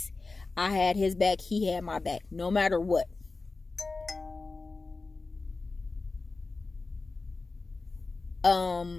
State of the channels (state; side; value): quieter; right; 3.7 dB